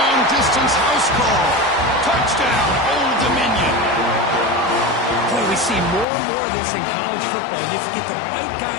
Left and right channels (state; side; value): drops out; right; at 6.1 s